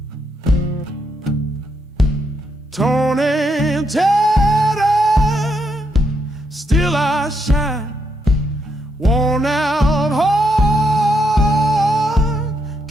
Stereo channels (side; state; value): both; normal; correlation 0.78